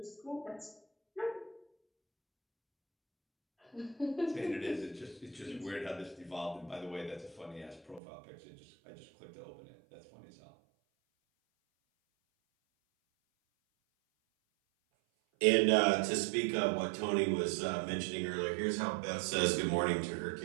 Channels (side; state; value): left; drops out; at 8.0 s